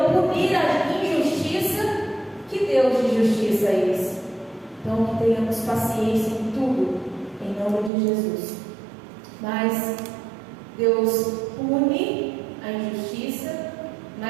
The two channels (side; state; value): left; drops out; at 7.9 s